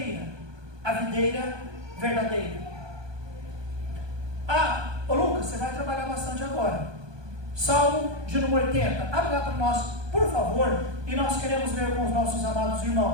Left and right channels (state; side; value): late; left; 1.2 ms